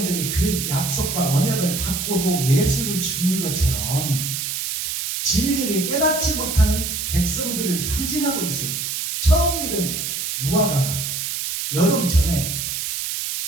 그 약속과 언약을 받고도 예수를 죽인 것처럼 진리를 깨닫지 못하는 백성들을 상징하고 있어요. 처음 익은 무화과가 여름 전에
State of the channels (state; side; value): noise; right; hiss, 3 dB below the sound